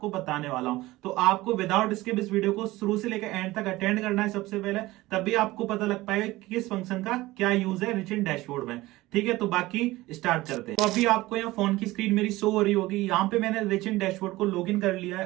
बताने वाला हूं। तो आपको विदाउट स्किप इस वीडियो को शुरू से लेकर एंड तक अटेंड करना है सबसे पहले, तभी आपको पता लग पाएगा कि किस फंक्शन का क्या यूज है रिच इन डैशबोर्ड में। ठीक है, तो बाकी स्टार्ट करते हैं। तो अभी आपको यहाँ फोन की स्क्रीन मेरी शो हो रही होगी। यहाँ पे मैंने रिच इन डैशबोर्ड को लॉगिन कर लिया है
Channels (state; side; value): quieter; left; 18.6 dB